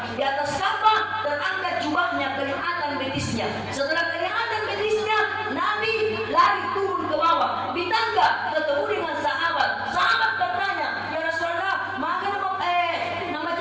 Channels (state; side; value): identical; both; correlation 1.00